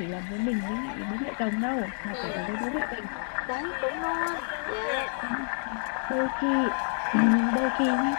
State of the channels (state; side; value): silent; right; 55 dB below the other